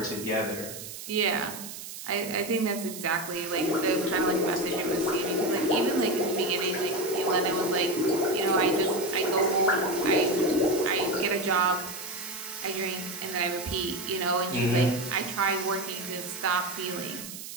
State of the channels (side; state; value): right; noise; hiss, 11 dB below the sound